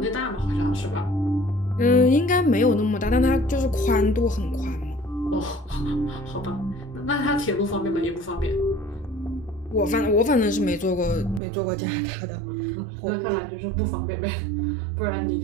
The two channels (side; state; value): left; drops out; at 11.4 s